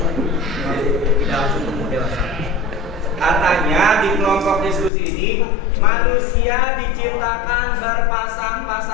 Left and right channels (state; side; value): drops out; right; at 4.9 s